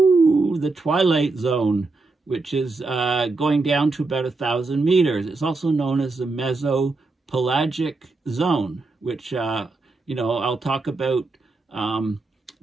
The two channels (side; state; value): left; quieter; 3.6 dB